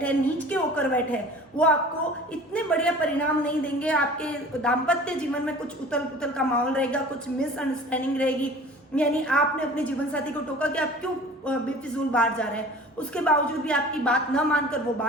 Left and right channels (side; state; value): both; normal; correlation 0.44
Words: हैं, नीच के होकर बैठे हैं, वो आपको इतने बढ़िया परिणाम नहीं देंगे। आपके दाम्पत्य जीवन में कुछ उथल पुथल का माहौल रहेगा, कुछ मिसअंडरस्टैंडिंग रहेगी। यानी आपने अपने जीवन साथी को टोका कि आप क्यों बेफिजूल बाहर जा रहे हैं, उसके बावजूद भी आपकी बात न मानकर वो